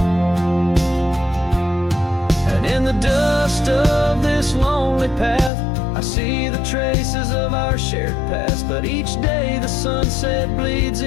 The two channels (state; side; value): drops out; right; at 5.5 s